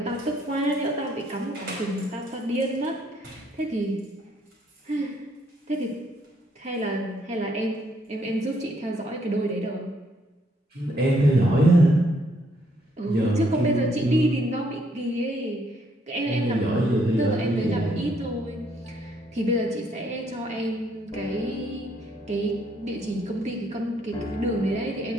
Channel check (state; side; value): normal; both; correlation 0.69